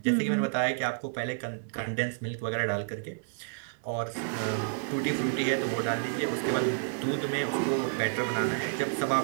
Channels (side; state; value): left; silent; digital silence